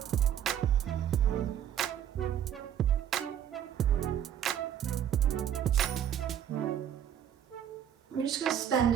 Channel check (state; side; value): quieter; left; 9.9 dB